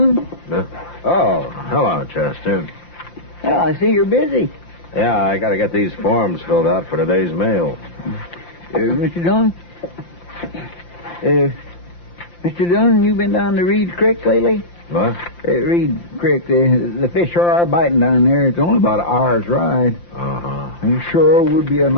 Oh, hello, Chester. Well, I see you're busy. Yeah, I got to get these forms filled out for today's mail. Mr. Dillon? Mr. Dillon, you been down to Reed's Creek lately? What? Reed Creek, the fish sure are biting down there. It's only about an hour's ride. Uh-huh. It sure would be a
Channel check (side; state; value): right; late; 5.8 ms